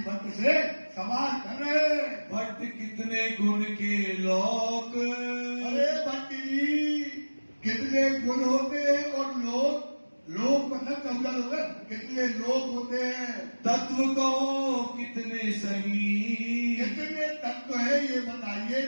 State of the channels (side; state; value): both; inverted; correlation -1.00